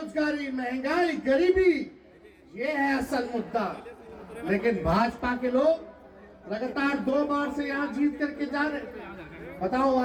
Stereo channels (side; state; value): both; identical; correlation 1.00